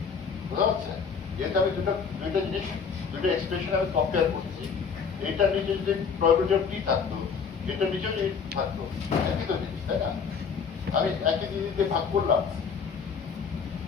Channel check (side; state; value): right; quieter; 6.0 dB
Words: বুঝা যাচ্ছে? যেহেতু আমি দুইটা জিনিস দুইটা এক্সপ্রেশন আমি কম্পেয়ার করছি, এইটার নিচে যদি প্রবাবিলিটি অফ টি থাকতো এটার নিচেও যদি থাকতো, একই তো জিনিস, তাই না? আমি একই জিনিস দিয়ে ভাগ করলাম,